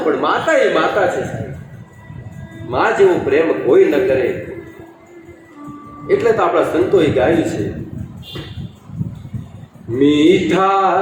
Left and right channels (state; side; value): identical; both; correlation 1.00